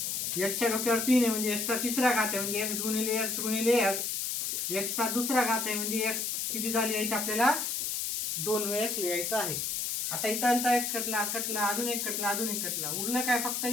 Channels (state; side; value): noise; left; hiss, 1 dB below the sound